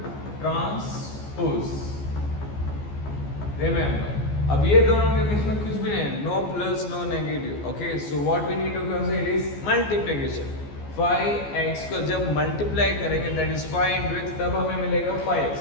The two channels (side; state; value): right; late; 14 ms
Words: Transpose. Remember. अब ये दोनों के बीच में कुछ भी नहीं, no plus no negative. Okay, so what we need to consider is multiplication. 5x को जब मल्टीप्लाई करेंगे दैट इज 5 into x, तब हमें मिलेगा 5x.